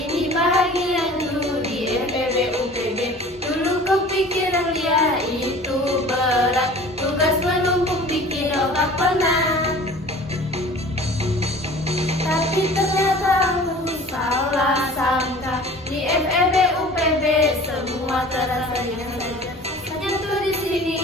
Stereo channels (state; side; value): normal; both; correlation 0.44